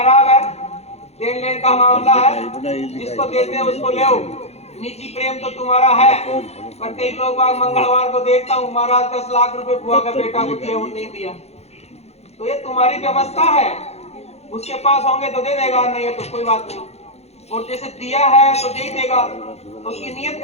है, देन लेन का मामला है, जिसको देते हैं उसको ले। निजी प्रेम तो तुम्हारा है, पर कई लोग मंगलवार को देखता हूँ महाराज 10 लाख रुपए बुआ का बेटा को दिया, वो नहीं दिया। तो ये तुम्हारी व्यवस्था है, उसके पास होंगे तो दे देगा, नहीं है तो कोई बात नहीं। और जैसे दिया है तो दे ही देगा, तो उसकी नीयत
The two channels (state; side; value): late; right; 0.31 ms